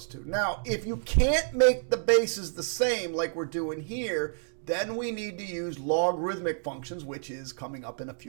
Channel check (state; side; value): silent; left; digital silence